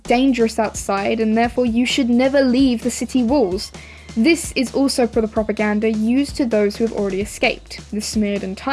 outside and therefore you should never leave the city walls. This is also for the propaganda used to those who have already escaped, the Smeared and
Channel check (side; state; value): both; identical; correlation 1.00